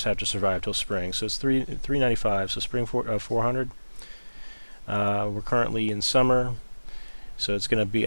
have to survive till spring. So it's 395. So spring 400. We're currently in summer. So it's going to be,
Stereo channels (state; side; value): inverted; both; correlation -1.00